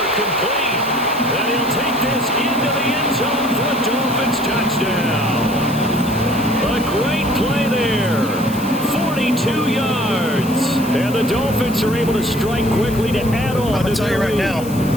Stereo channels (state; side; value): noise; left; hiss, 15 dB below the sound